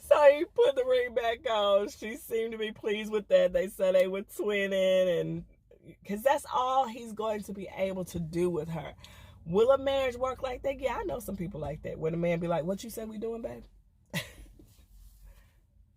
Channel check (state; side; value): identical; both; correlation 1.00